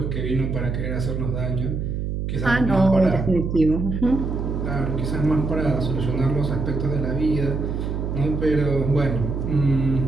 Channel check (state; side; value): noise; right; hum, 3 dB below the sound